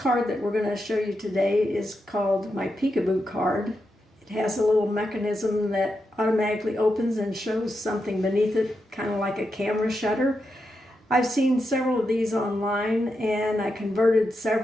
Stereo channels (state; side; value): normal; both; correlation 0.86